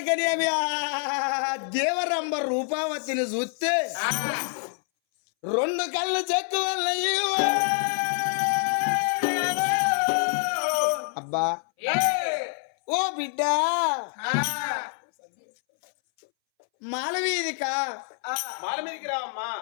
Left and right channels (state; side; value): silent; right; 61 dB below the other